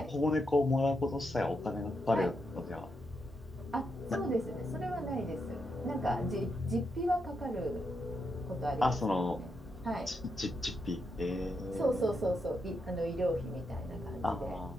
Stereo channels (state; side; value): normal; both; correlation 0.83